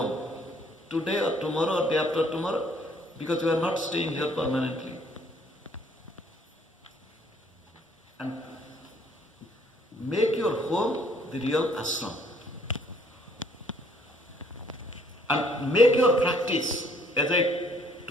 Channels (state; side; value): normal; both; correlation 0.63